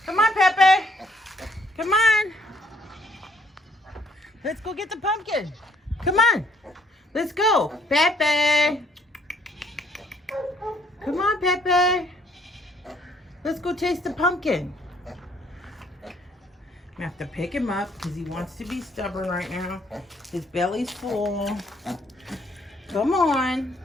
Come on, Pepe. Come on. Let's go get the pumpkin. Come on. Let's go. Pepe. Come on, Pepe. Let's go taste the pumpkin. I'm gonna have to pick him up because he wants to be stubborn right now. His belly's full. Come on.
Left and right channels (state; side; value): normal; both; correlation 0.65